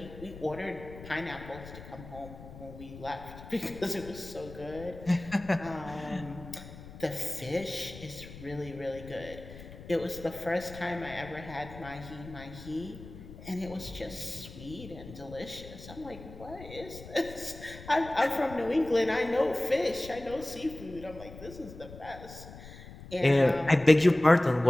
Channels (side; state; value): left; noise; rumble, 15 dB below the sound